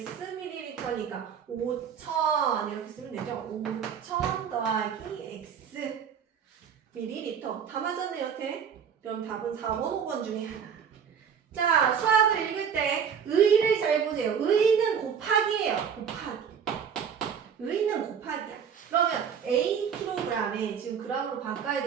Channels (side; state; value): left; quieter; 7.4 dB